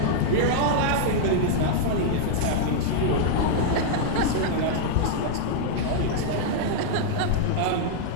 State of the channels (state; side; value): different; both; correlation -0.01